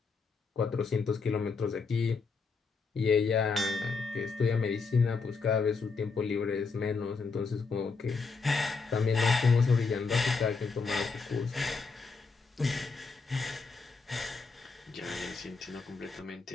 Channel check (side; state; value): right; quieter; 4.6 dB